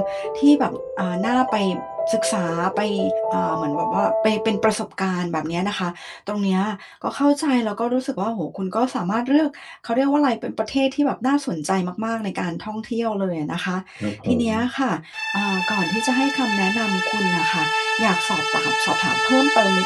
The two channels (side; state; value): both; identical; correlation 1.00